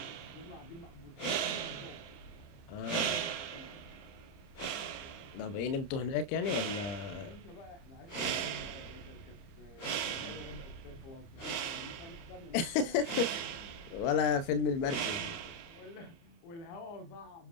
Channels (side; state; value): right; late; 30 ms